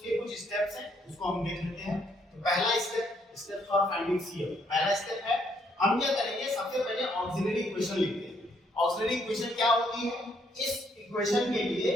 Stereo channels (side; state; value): both; normal; correlation 0.70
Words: कुछ स्टेप्स हैं, उसको हम देख लेते हैं। तो पहला स्टेप फॉर फाइंडिंग cf, पहला स्टेप है हम क्या करेंगे, सबसे पहले ऑक्सिलरी इक्वेशन लिखते हैं। ऑक्सिलरी इक्वेशन क्या होती है? इस इक्वेशन के लिए,